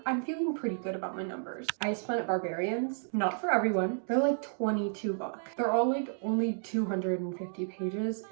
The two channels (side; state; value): left; silent; digital silence